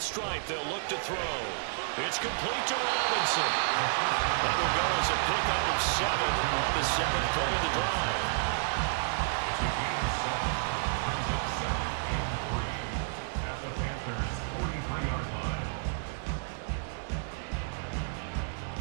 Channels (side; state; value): left; silent; digital silence